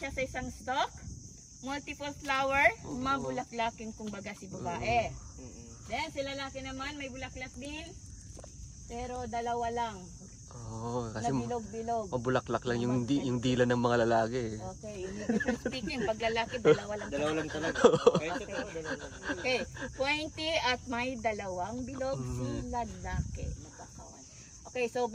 sa isang stalk. Multiple flower, mabulaklaking kumbaga si babae. Then si lalaki naman may bulaklak din, pero dalawa lang. Kasi bilog-bilog. mabulaklak lang yung dila ng mga lalaki. Okay, speaking, pag lalaki, dalawa lang. Dalawa lang talaga. Okay, pointy at may dalawang bilog si lalaki. Magkakawan. Okay, so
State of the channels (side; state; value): both; identical; correlation 1.00